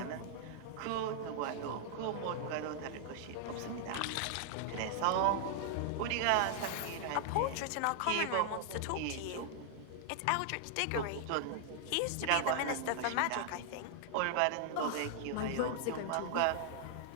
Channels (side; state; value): both; different; correlation 0.00